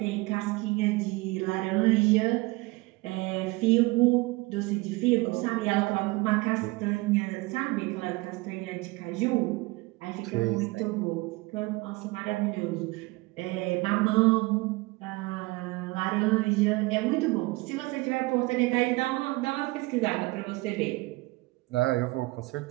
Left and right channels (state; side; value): quieter; left; 22.9 dB